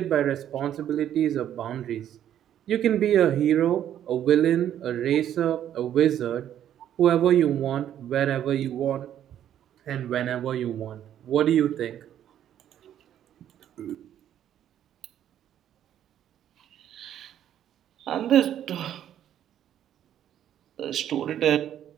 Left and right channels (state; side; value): quieter; left; 10.7 dB